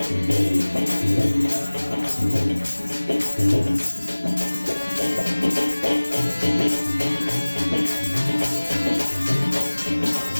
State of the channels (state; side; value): inverted; both; correlation -1.00